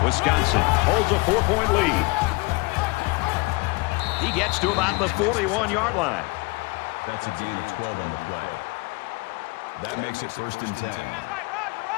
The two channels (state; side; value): quieter; right; 26.7 dB